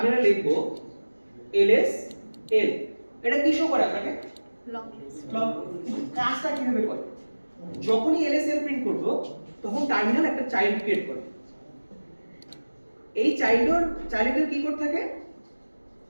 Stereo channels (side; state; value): both; inverted; correlation -1.00